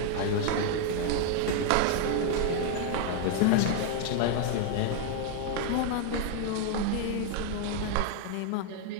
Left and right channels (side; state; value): both; different; correlation 0.00